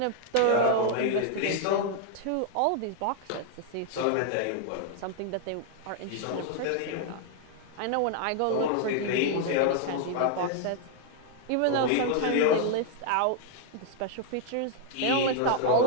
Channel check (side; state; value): both; different; correlation 0.00